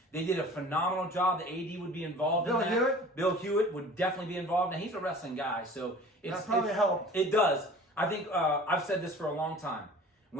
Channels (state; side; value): normal; both; correlation 0.44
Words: They did a phenomenal job. The AD would be involved in that. Hewitt? Bill Hewitt would definitely be involved. Now, he's a wrestling guy, so That probably helped. It does. I think I've said this for a long time.